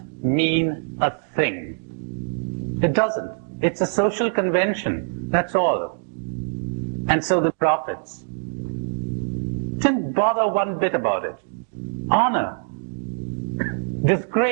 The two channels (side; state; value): left; silent; digital silence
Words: mean a thing. It doesn't. It's a social convention. That's all. And so the prophets didn't bother one bit about it. Honor,